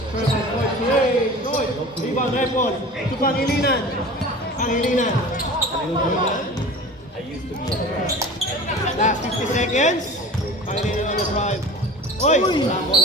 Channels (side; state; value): both; normal; correlation 0.38